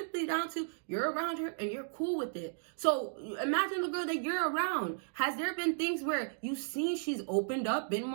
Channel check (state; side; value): silent; left; digital silence